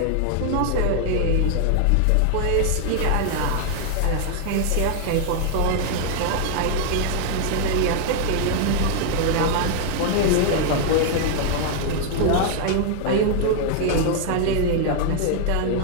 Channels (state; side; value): different; both; correlation 0.00